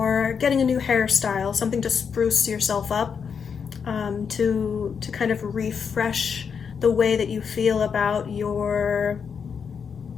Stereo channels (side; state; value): right; quieter; 6.5 dB